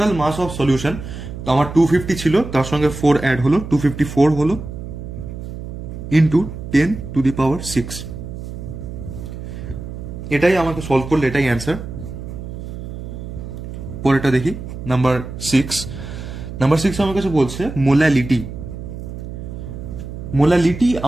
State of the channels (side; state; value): right; noise; hum, 9 dB below the sound